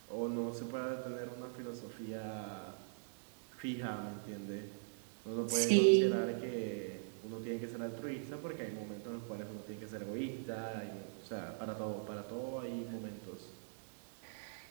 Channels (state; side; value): silent; left; digital silence